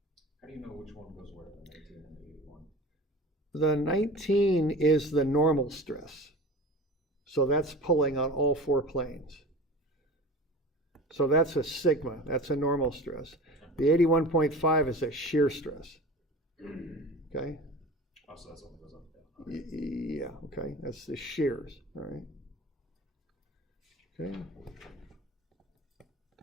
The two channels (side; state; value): both; normal; correlation 0.36